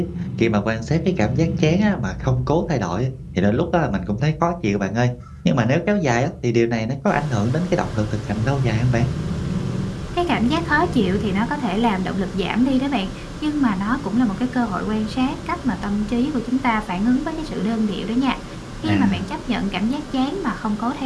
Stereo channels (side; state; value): both; identical; correlation 1.00